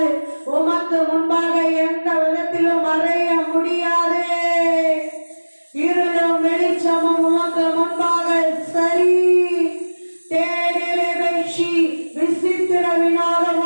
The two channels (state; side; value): inverted; both; correlation -1.00